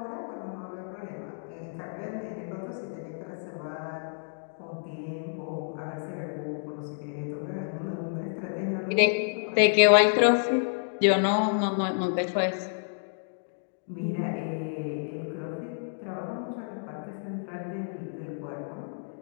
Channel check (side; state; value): right; silent; digital silence